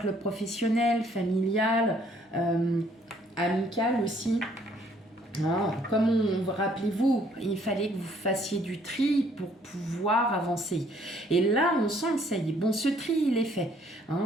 professionnel, familial, amical aussi. Ah, rappelez-vous, il fallait que vous fassiez du tri pour pouvoir avancer. Et là, on sent que ça y est. Bon, ce tri, il est fait.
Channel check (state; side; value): normal; both; correlation 0.63